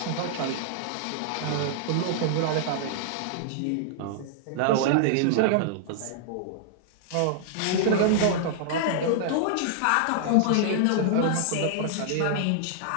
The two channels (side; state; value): both; different; correlation -0.01